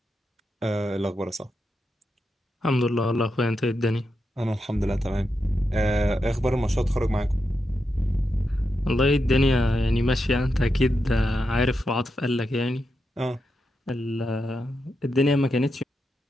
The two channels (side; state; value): both; normal; correlation 0.86